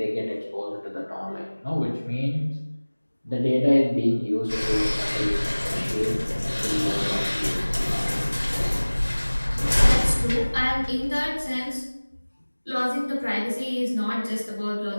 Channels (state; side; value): inverted; both; correlation -1.00